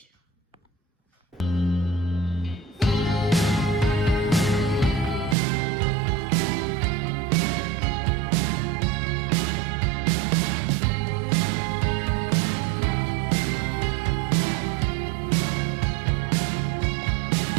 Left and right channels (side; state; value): left; drops out; at 5.4 s